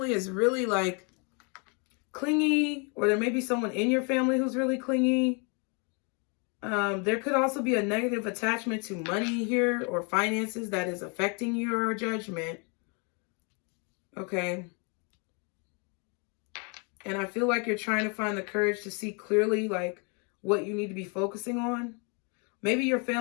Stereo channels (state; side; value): quieter; right; 34.6 dB